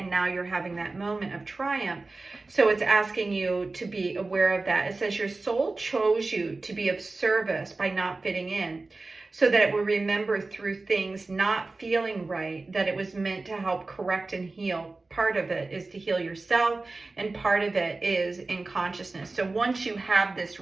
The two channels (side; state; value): left; quieter; 3.5 dB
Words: now you're having that moment of triumph. So it's asking you to be aware of that. It says your soul chose you to be of service by not fitting in. so that it will remember through things not feeling right, that it was meant to help correct and heal. Part of it is to heal yourself, and part of it is in consciousness. So once you have this